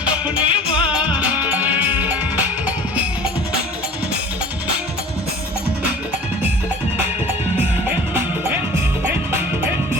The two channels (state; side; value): normal; both; correlation 0.44